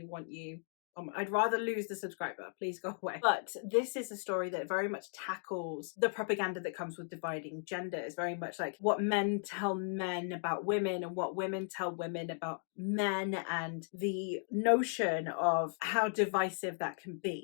want you. I'd rather lose the subscriber. Please go away. But this is a story that very much tackles the propaganda that comes with dividing gender. It's very much like what men tell men about women and what women tell women about men, and the notion of how divisive that can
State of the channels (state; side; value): silent; right; 54 dB below the other